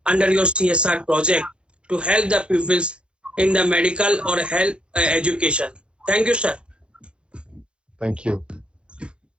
under your CSR project to help the pupils in the medical or health education. Thank you, sir. Thank you.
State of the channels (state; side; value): late; left; 0.056 ms